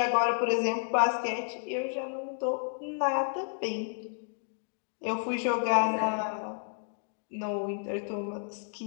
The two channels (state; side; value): silent; right; digital silence